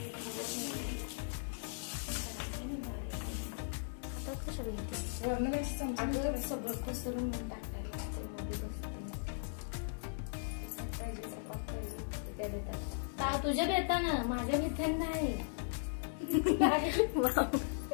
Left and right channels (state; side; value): silent; right; digital silence